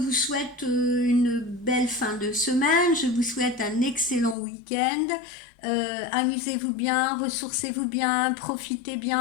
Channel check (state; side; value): drops out; right; at 4.4 s